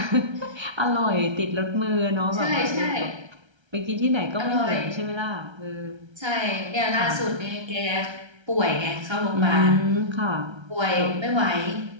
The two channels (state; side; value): late; left; 1.3 ms